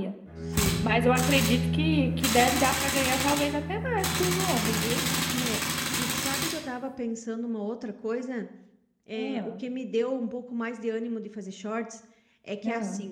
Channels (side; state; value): both; identical; correlation 1.00